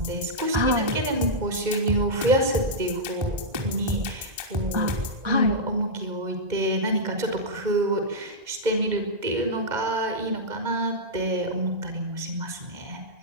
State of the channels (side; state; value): left; late; 2.1 ms